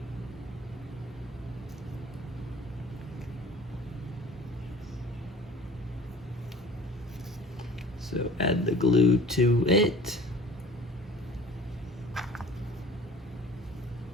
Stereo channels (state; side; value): normal; both; correlation 0.46